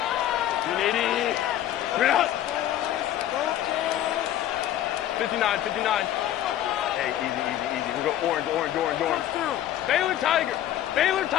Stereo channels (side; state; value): right; quieter; 12.2 dB